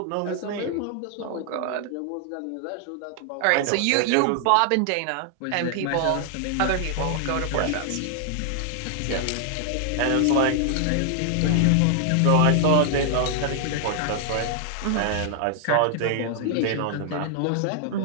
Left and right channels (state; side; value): different; both; correlation 0.00